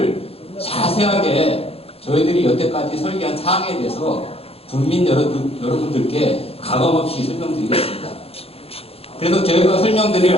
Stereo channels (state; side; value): late; right; 0.28 ms